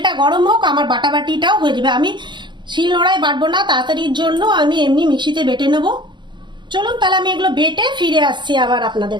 গরম হোক, আমার বাটাবাটিটাও হয়ে যাবে। আমি শিলনোড়ায় বাটবো না, তাড়াতাড়ির জন্য আমি এমনি মিক্সিতে বেটে নেব। চলুন তাহলে আমি এগুলো বেটে ফিরে আসছি আবার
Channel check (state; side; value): late; left; 0.22 ms